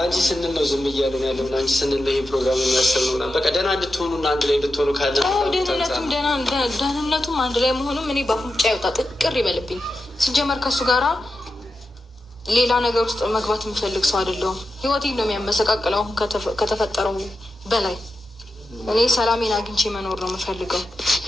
ስንል ነው ዝም እያለን ያለው። ለአንቺ ስንል ነው ይህ ፕሮግራም የሚያሰብ ነው። በቃ ደህና እንድትሆኑ እና አንድ ላይ እንድትሆኑ ካለ ደህንነቱም አንድ ላይ መሆኑም እኔ በአፍንጫ ይወጣ ጥቅር ይበልብኝ። ሲጀመር ከእሱ ጋራ ሌላ ነገር ውስጥ መግባት የምፈልግ ሰው አይደለሁም። ህይወቴን ነው የሚያመሰቃቅለው ከተፈጠረው በላይ እኔ ሰላሜን አግኝቼ መኖር ነው የምፈልገው።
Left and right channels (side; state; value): both; normal; correlation 0.90